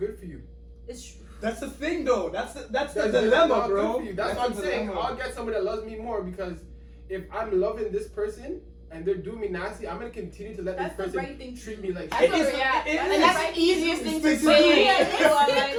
for you. It's true. That's the thing, though. That's the dilemma, bro. That's what I'm saying. I'll get somebody that loves me more, because if I'm loving this person and they're doing me nasty, I'm gonna continue to let That's this the person right thing to treat do. me like That's shit. and that's the easiest thing to It's say.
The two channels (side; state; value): both; identical; correlation 1.00